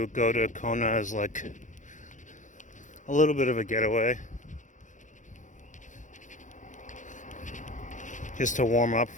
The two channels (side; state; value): right; late; 0.36 ms